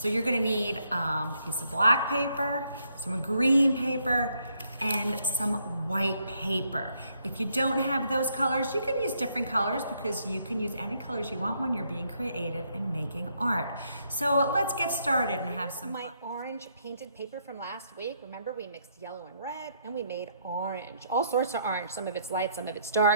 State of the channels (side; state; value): both; inverted; correlation -0.73